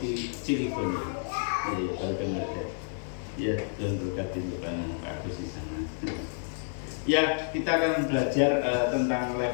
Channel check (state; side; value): silent; right; digital silence